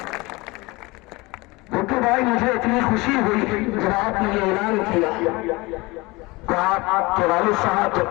भुट्टू भाई, मुझे इतनी खुशी हुई जब आपने ये ऐलान किया कि आपके वालिद साहब जब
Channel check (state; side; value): quieter; right; 23.4 dB